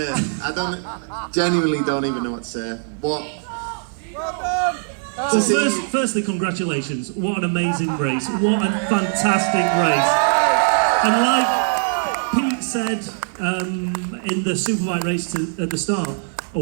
Genuinely don't even know what to say. So firstly, congratulations. What an amazing race. What a fantastic race. And like Pete said in the Superbike race at the start,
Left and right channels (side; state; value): left; silent; 56 dB below the other